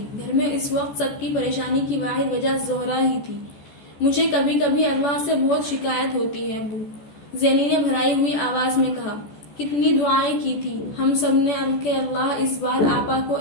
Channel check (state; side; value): late; right; 14 ms